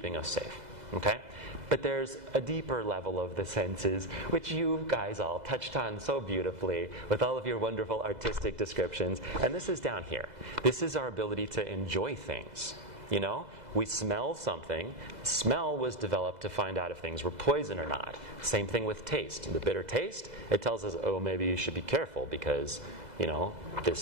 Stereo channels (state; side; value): late; left; 2.0 ms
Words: us safe. Okay? But there's a deeper level of the senses, which you guys all touched on so beautifully with all of your wonderful artistic descriptions. And this is down here. This is our ability to enjoy things. You know, we smell something. Smell was developed to find out if things were poison or not. Same thing with taste. The bitter taste, it tells us, oh, maybe you should be careful because, you know,